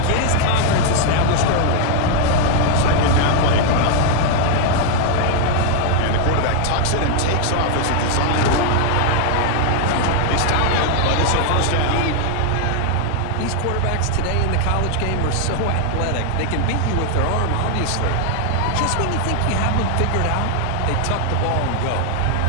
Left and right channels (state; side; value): different; both; correlation 0.00